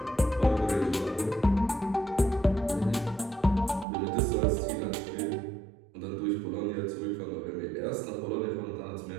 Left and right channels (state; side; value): drops out; left; at 3.9 s